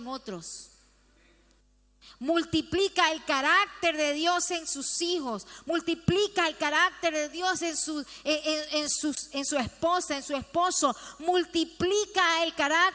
otros. Multiplica el carácter de Dios en sus hijos. Multiplica el carácter de Dios en su esposa, en su esposo. Multiplica el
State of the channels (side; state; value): both; identical; correlation 1.00